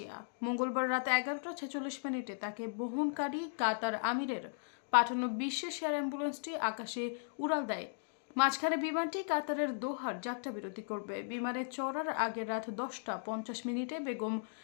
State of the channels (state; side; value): silent; right; digital silence